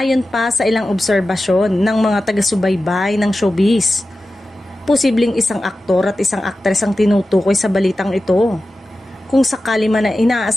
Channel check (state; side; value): normal; both; correlation 0.94